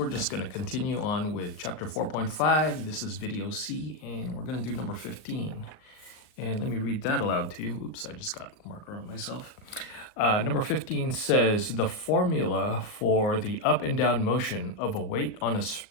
just going to continue on with chapter 4.5. This is video C, and we're going to do number 15. And let me read that aloud to you. Oops, I just got a marker on myself. Number 15 says, the formula for the up and down motion of a weight on a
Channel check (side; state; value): right; late; 38 ms